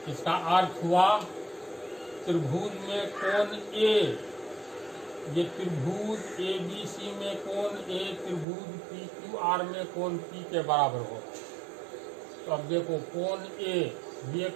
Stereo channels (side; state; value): left; drops out; at 8.5 s